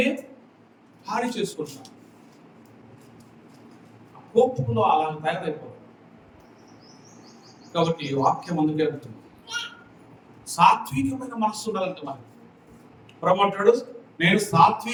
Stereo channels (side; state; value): both; identical; correlation 1.00